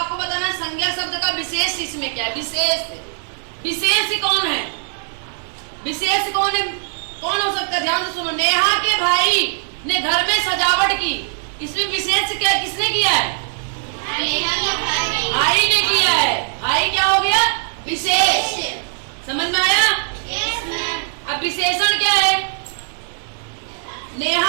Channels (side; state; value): left; silent; digital silence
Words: बताना संज्ञा शब्द का विशेष इसमें क्या है? विशेष। विशेष कौन है? विशेष कौन है? कौन हो सकता है? ध्यान से सुनो। नेहा के भाई ने घर में सजावट की, इसमें विशेष क्या किसने किया है? भाई ने किया है। भाई क्या हो गया? विशेष। समझ में आया? अब विशेषण क्या है?